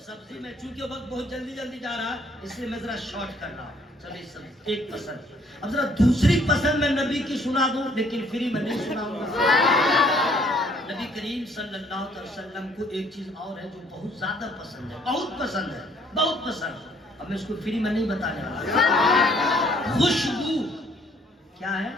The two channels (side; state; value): both; normal; correlation 0.63